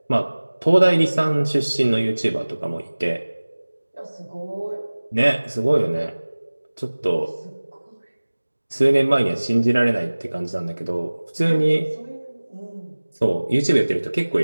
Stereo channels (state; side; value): inverted; both; correlation -1.00